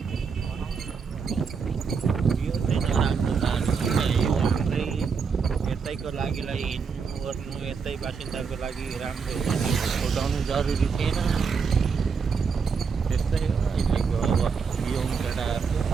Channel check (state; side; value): quieter; left; 5.7 dB